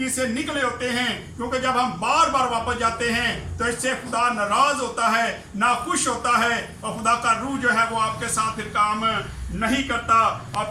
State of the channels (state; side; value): identical; both; correlation 1.00